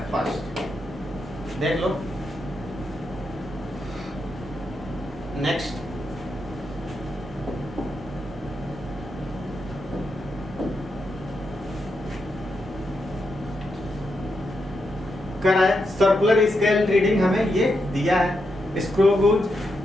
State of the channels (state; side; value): normal; both; correlation 0.84